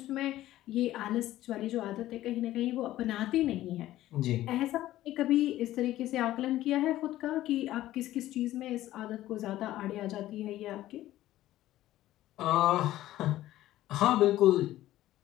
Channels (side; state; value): right; quieter; 14.6 dB